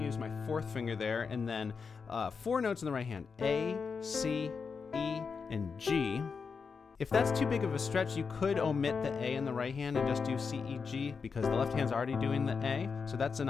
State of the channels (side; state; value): right; quieter; 5.4 dB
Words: use my fourth finger there, and then four notes in the right hand, A, C, E, and G. If that's too big of a stretch, you could omit the A in the right hand and just do C, E, G, because the left hand's already doing the A, so that's an